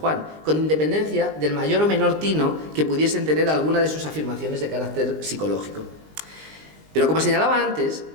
con independencia del mayor o menor tino que pudiesen tener alguna de sus afirmaciones de carácter psicológico. Pero como señalaba antes,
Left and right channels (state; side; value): late; left; 19 ms